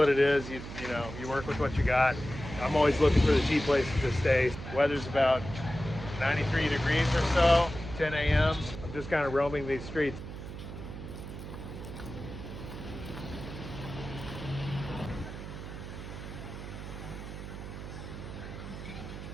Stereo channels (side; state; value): right; noise; hum, 10 dB below the sound